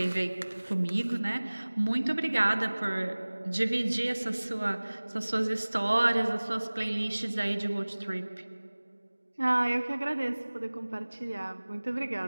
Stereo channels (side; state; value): both; inverted; correlation -1.00